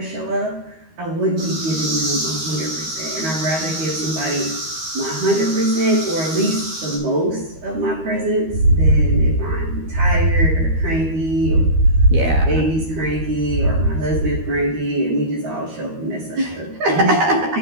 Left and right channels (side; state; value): left; late; 13 ms